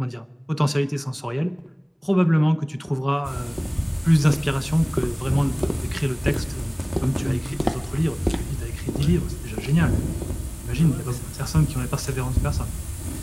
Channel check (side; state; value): both; identical; correlation 1.00